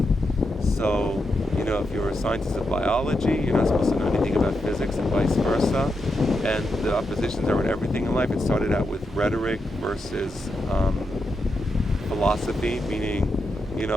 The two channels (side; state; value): both; normal; correlation 0.85